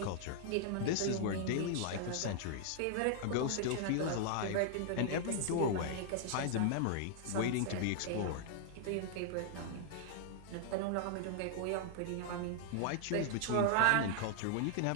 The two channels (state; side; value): different; both; correlation -0.01